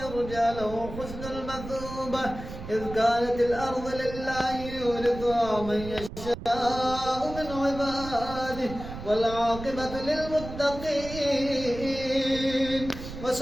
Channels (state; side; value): noise; right; rumble, 11 dB below the sound